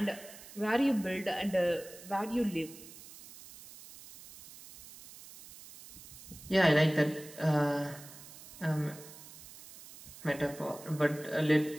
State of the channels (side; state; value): right; noise; hiss, 17 dB below the sound